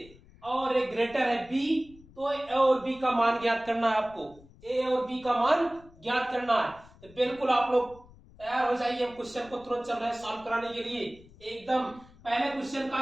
और एक ग्रेटर है b, तो a और b का मान ज्ञात करना है आपको। a और b का मान ज्ञात करना है। तो बिल्कुल आप लोग तैयार हो जाइए। हम क्वेश्चन को तुरंत चल रहे हैं सॉल्व कराने के लिए। एकदम पहले क्वेश्चन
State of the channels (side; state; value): left; noise; rumble, 24 dB below the sound